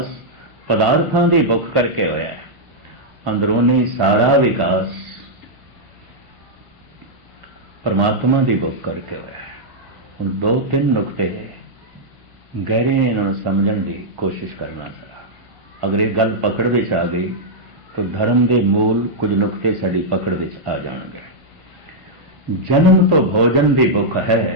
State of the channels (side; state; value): left; late; 1.1 ms